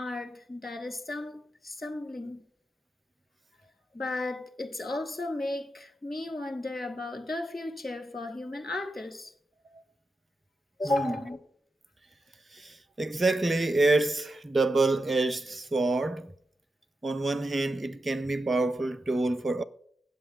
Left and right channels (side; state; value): both; normal; correlation 0.88